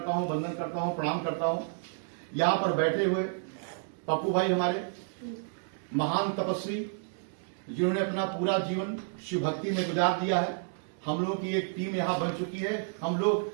हूं, वंदन करता हूं, प्रणाम करता हूं। यहां पर बैठे हुए पप्पू भाई हमारे महान तपस्वी, जिन्होंने अपना पूरा जीवन शिव भक्ति में गुजार दिया है। हम लोगों की एक टीम यहां बन चुकी है। हम लोग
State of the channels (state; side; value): silent; left; digital silence